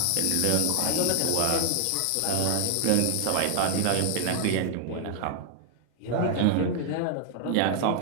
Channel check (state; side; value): different; both; correlation 0.00